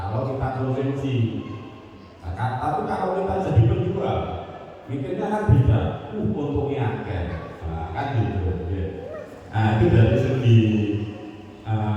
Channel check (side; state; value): both; identical; correlation 1.00